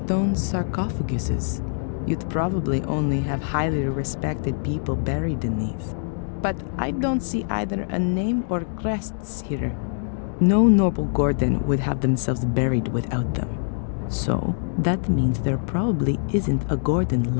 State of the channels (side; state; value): right; silent; digital silence